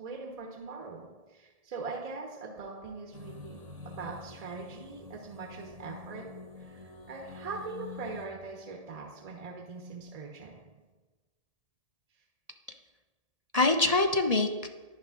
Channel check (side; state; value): left; late; 1.7 ms